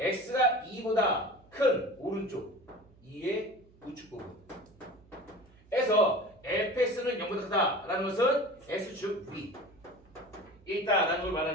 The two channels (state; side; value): noise; right; hum, 28 dB below the sound